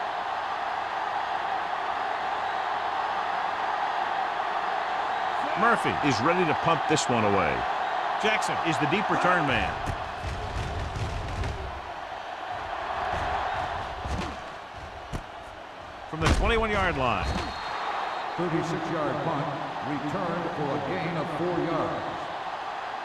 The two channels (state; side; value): identical; both; correlation 1.00